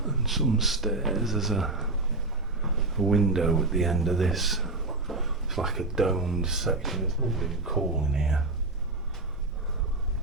And some stairs. There's a window at the end of this. It's like a domed section. It's lovely and cool in here.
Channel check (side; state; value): left; quieter; 3.1 dB